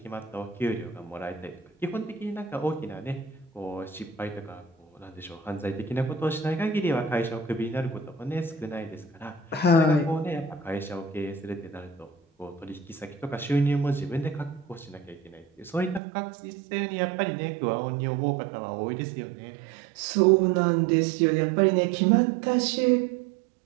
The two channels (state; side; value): drops out; left; at 16.0 s